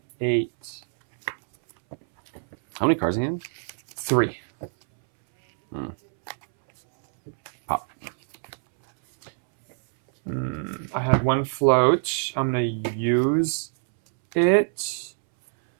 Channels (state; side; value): silent; left; 62 dB below the other